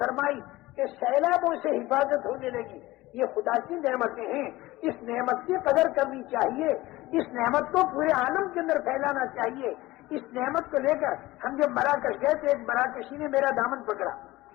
کہ سیلابوں سے حفاظت ہونے لگی. یہ خدا کی نعمتیں ہیں، اس نعمت کی قدر کرنی چاہیے، اس نعمت کو پورے عالم کے اندر پھیلانا چاہیے. اس نعمت کو لے کر ہم جب مراکش گئے تو ایک مراکشی نے میرا دامن پکڑا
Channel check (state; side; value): quieter; right; 18.6 dB